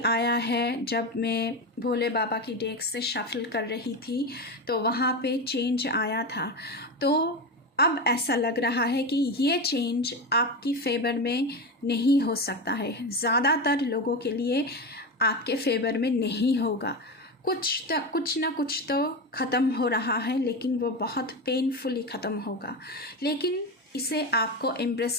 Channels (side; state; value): both; normal; correlation 0.19